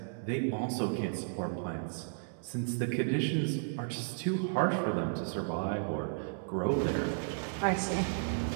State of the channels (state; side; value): silent; left; digital silence